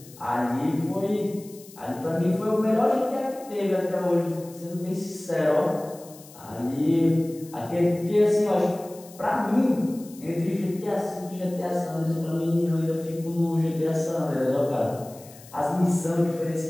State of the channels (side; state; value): left; noise; hiss, 21 dB below the sound